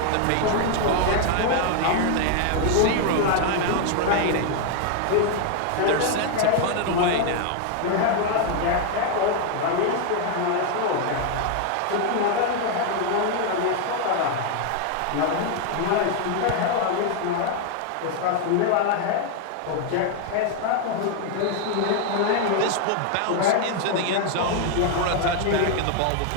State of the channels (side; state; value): both; different; correlation 0.00